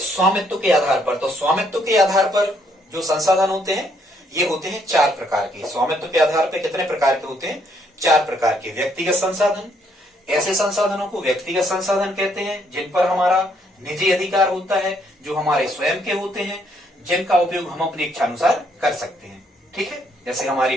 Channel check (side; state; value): both; normal; correlation 0.70